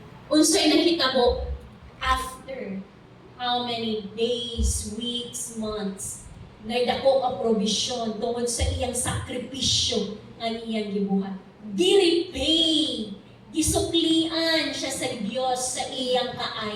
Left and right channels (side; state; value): both; identical; correlation 1.00